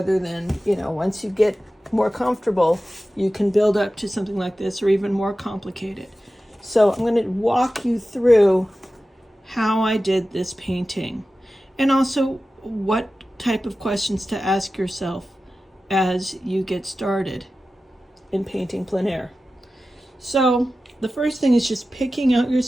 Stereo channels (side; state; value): both; normal; correlation 0.94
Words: than, once you get more comfortable, you can build up to something like this or even more complicated. So I'm going to walk you through how I did this painting, and also what type of questions to ask yourself as you get started in painting plein air. So the first thing is just picking out your